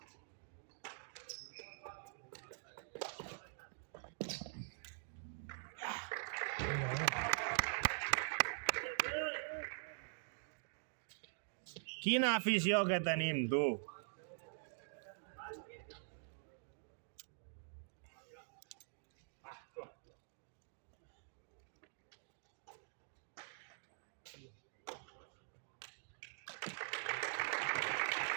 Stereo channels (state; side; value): silent; left; digital silence